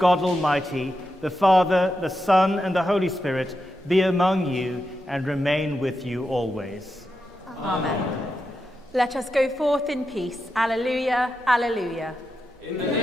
God Almighty, the Father, the Son, and the Holy Spirit be among you and remain with you always. Amen. Let us go forth in peace. Alleluia, alleluia. In the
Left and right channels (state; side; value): normal; both; correlation 0.87